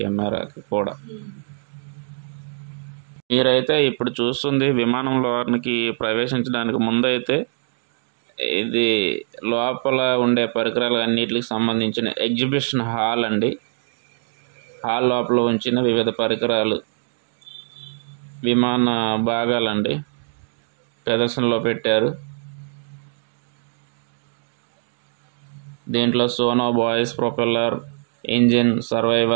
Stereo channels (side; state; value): left; silent; 60 dB below the other